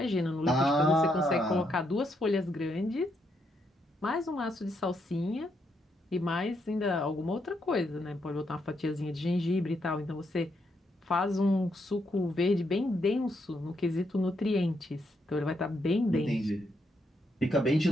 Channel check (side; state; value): both; normal; correlation 0.78